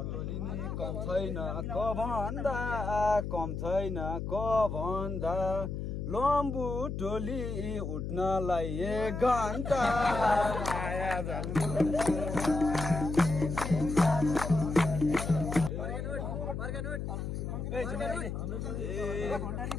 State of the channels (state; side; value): noise; left; hum, 4 dB below the sound